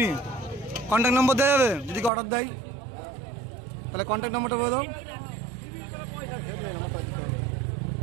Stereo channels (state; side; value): drops out; left; at 2.1 s